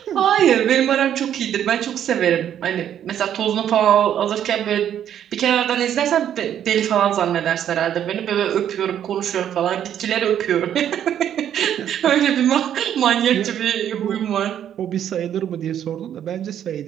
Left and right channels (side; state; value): left; quieter; 10.0 dB